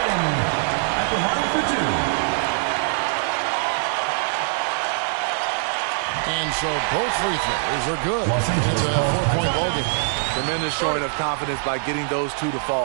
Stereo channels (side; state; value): left; silent; digital silence